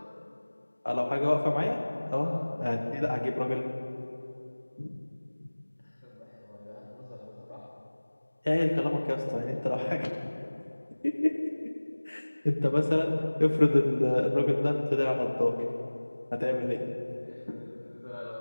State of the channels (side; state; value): both; inverted; correlation -1.00